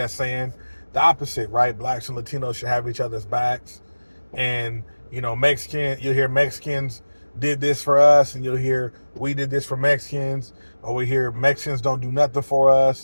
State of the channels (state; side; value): inverted; both; correlation -1.00